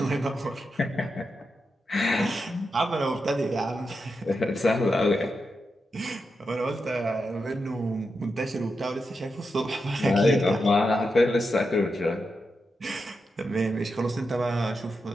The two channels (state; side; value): normal; both; correlation 0.87